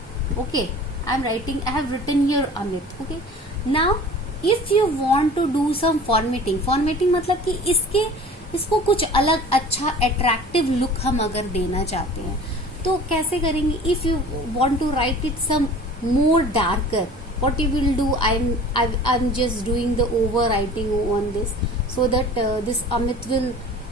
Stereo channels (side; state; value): both; normal; correlation 0.43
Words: Okay, I have written here Amit. Okay, now if you want to do some formatting मतलब कि इसको कुछ अलग अच्छा attractive look हम अगर देना चाहते हैं तो कैसे करेंगे? If you want to write it some more darker, what you will do? I'm just doing the overwriting on this so that this Amit will